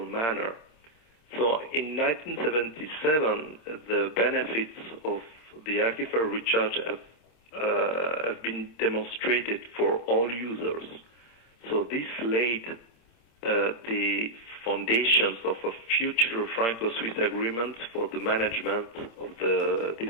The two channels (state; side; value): late; right; 26 ms